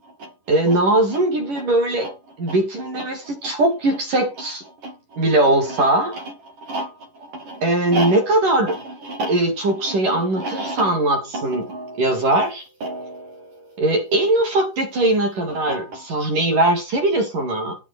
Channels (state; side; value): late; left; 11 ms